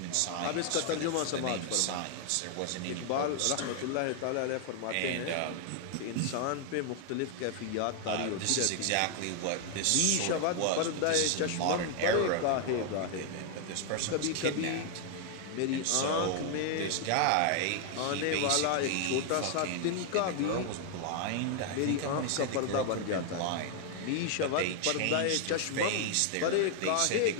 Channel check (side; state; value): both; different; correlation 0.00